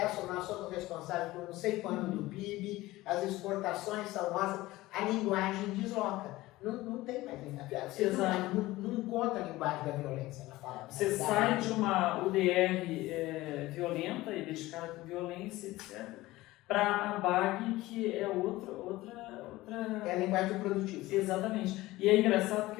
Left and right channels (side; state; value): right; quieter; 18.2 dB